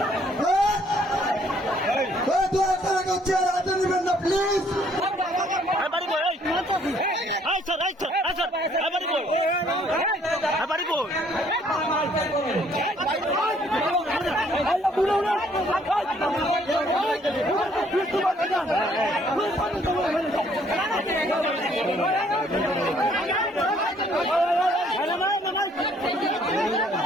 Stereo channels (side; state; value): both; normal; correlation 0.63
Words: দু একটা চেয়ার হাতে নেবেন না প্লিজ। এবারে